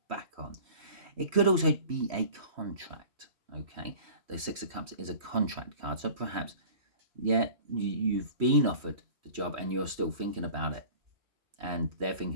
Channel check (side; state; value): left; late; 3.1 ms